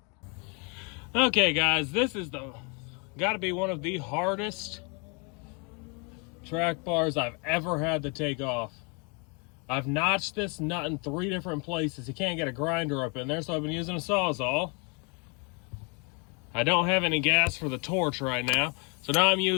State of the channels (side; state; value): right; quieter; 34.1 dB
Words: Okay guys, this is gotta be one of the hardest track bars I've ever had to take off. I've notched this nut in 3 different places. You can't get a grinder up in there, so I've been using a Sawzall. I don't have any gas for the torch right now, so now I'm